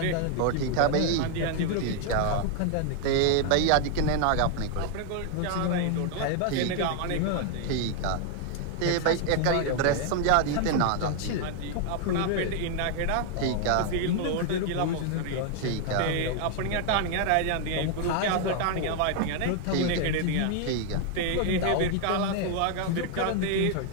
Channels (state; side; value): different; both; correlation 0.00